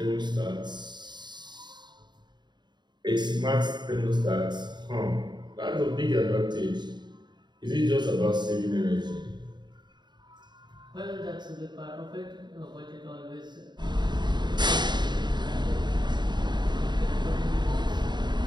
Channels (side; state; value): left; late; 0.21 ms